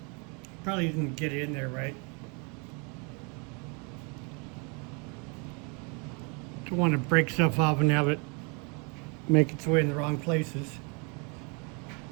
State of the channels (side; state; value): left; quieter; 33.5 dB